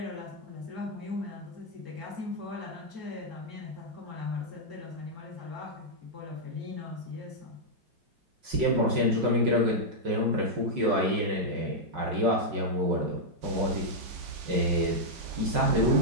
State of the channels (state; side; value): late; left; 5.4 ms